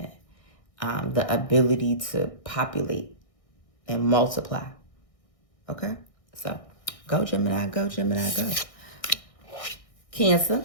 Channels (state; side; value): late; right; 1.6 ms